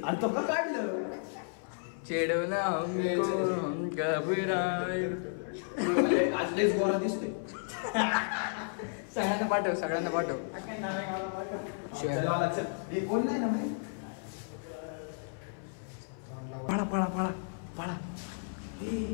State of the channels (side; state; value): right; silent; 56 dB below the other